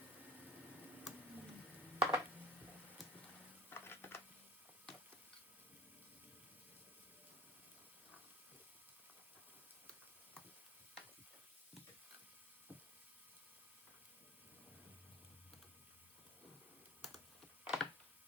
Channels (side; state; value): both; normal; correlation 0.38